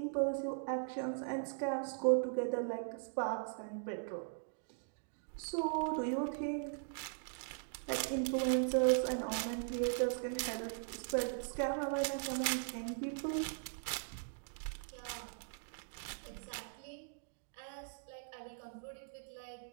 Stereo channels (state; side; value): silent; left; digital silence